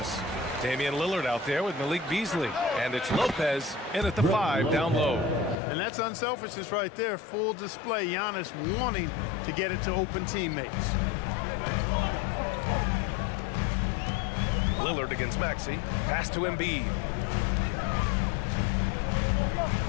Damian Lillard out there with Malik Beasley. And it's Lopez in at the 5 down low. And that's unselfishness right there. Full display. Giannis wanting to get it to open teammates. Lillard against Maxey. Pass to Embiid.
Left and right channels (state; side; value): drops out; right; at 5.6 s